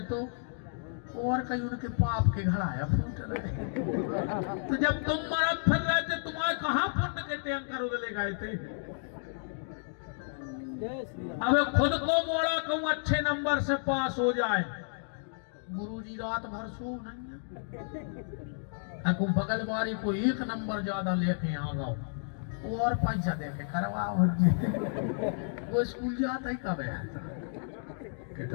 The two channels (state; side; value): silent; right; digital silence